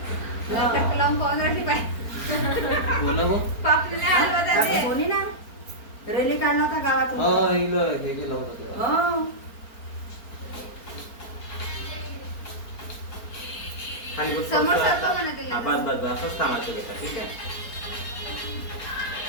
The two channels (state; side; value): late; right; 4.4 ms